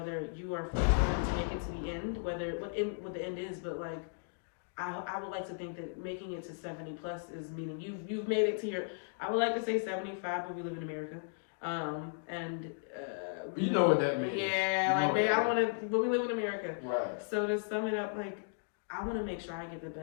you are going to make it to the end, what the end is, but like, I would like to think that making it to 70 plus is meaning you've made it to your. I would like to say 75, but we live in America, You know what that means. Yeah, you like man, I want to, but we live in America. Right. So to sum it up, like I want to make sure I get the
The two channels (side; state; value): right; silent; digital silence